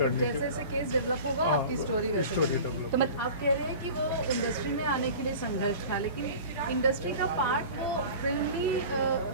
की। जैसे जैसे केस डेवलप होगा आपकी स्टोरी वैसे बनेगी। तो मतलब आप कह रहे हैं कि वो इंडस्ट्री में आने के लिए संघर्ष था, लेकिन इंडस्ट्री का पार्ट वो फिल्मी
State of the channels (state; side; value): inverted; both; correlation -0.38